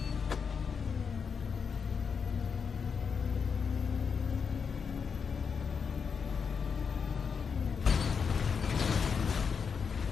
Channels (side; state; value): right; quieter; 6.1 dB